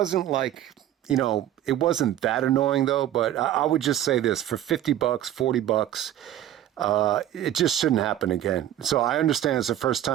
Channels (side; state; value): left; quieter; 12.1 dB